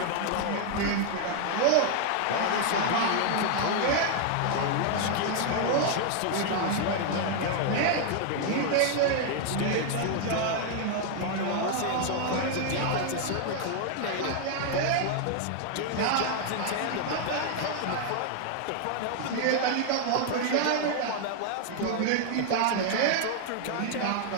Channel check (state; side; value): different; both; correlation 0.00